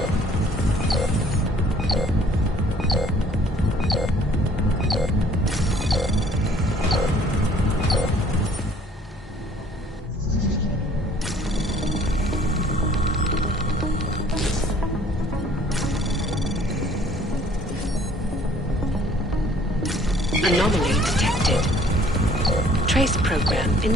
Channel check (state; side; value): normal; both; correlation 0.57